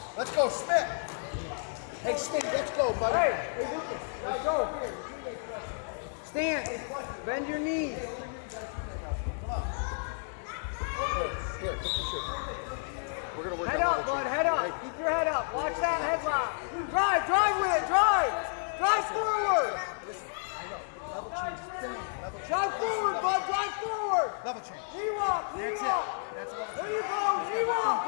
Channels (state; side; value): silent; right; 57 dB below the other